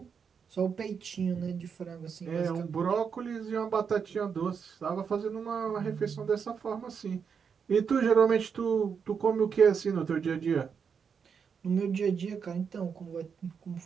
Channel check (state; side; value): quieter; left; 6.5 dB